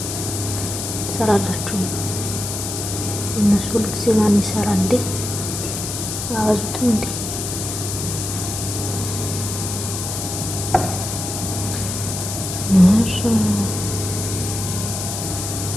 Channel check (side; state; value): left; noise; hiss, 5 dB below the sound